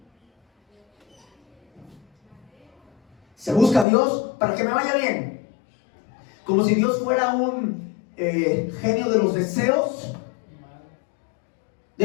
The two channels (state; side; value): drops out; right; at 3.9 s